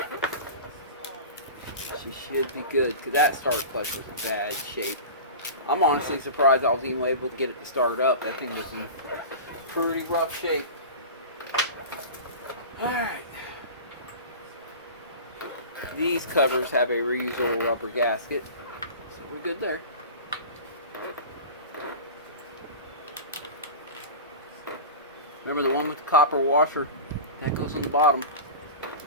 She should be good, because that start clutch was in bad shape. I'm honestly surprised I was even able to get it to start up. That thing was in pretty rough shape. Alright. These covers have a reusable rubber gasket, so we're good there. Remember the one with the copper washer? That goes on the bottom.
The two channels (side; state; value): both; inverted; correlation -0.32